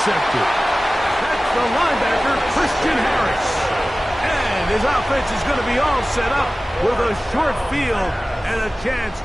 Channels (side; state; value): both; normal; correlation 0.97